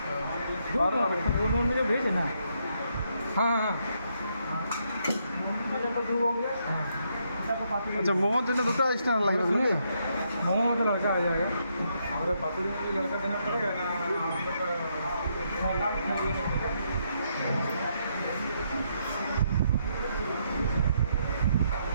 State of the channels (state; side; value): inverted; both; correlation -0.76